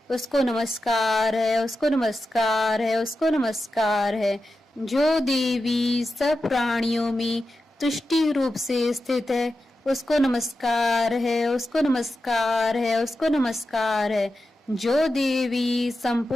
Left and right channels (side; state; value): both; normal; correlation 0.91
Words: उसको नमस्कार है, उसको नमस्कार है, उसको नमस्कार है। जो देवी सब प्राणियों में तुष्टि रूप से स्थित है, उसको नमस्कार है, उसको नमस्कार है, उसको नमस्कार है। जो देवी